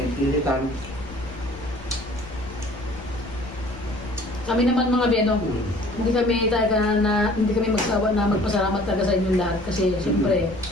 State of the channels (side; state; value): left; noise; rumble, 17 dB below the sound